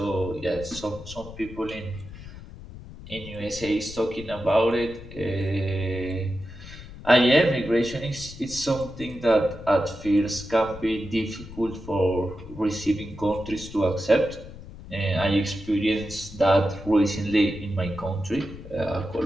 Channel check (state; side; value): noise; left; rumble, 15 dB below the sound